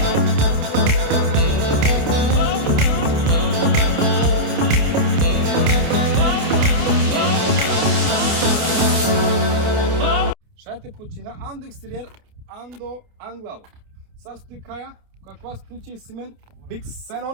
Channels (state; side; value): late; left; 29 ms